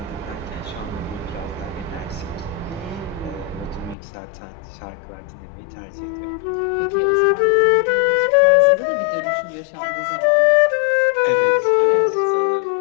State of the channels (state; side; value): drops out; right; at 4.0 s